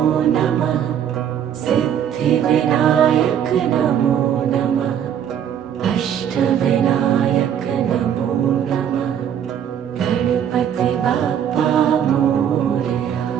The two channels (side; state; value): left; quieter; 9.2 dB